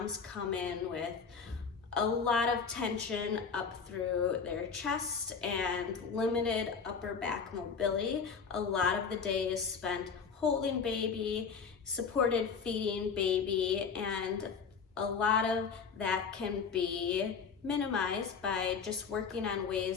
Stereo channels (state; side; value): quieter; right; 5.8 dB